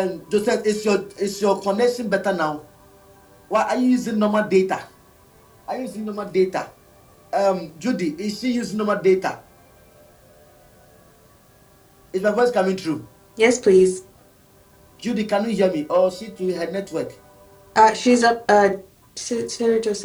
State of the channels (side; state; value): both; identical; correlation 1.00